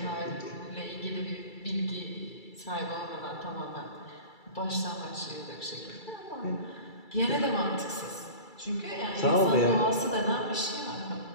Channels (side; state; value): right; late; 2.3 ms